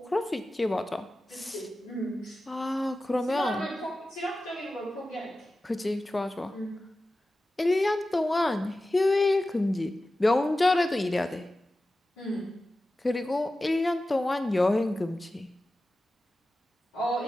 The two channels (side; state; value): both; normal; correlation 0.94